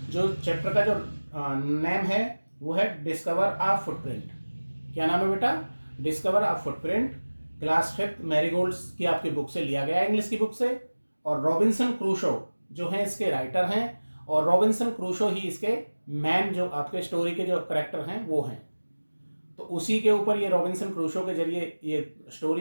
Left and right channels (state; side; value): inverted; both; correlation -1.00